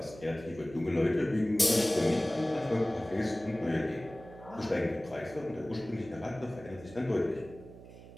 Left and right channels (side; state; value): right; noise; hum, 17 dB below the sound